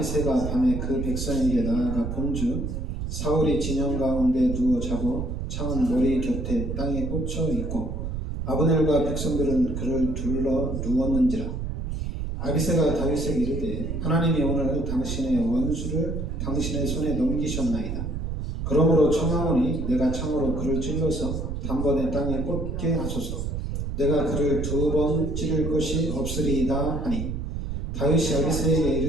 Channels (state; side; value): noise; right; rumble, 4 dB below the sound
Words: 밤에 그 백성에게 나아가 본즉 사울이 진영 가운데 누워 자고 창은 머리 곁에 땅에 꽂혀 있고 아브넬과 백성들은 그를 둘러 누웠는지라. 아비새가 다윗에게 이르되 하나님이 오늘 당신의 원수를 당신의 손에 넘기셨나이다. 그러므로 청하오니 내가 창으로 그를 찔러서 단번에 땅에 꽂게 하소서. 내가 그를 2번 찌를 것이 없으리이다 하니 다윗이 아비새에게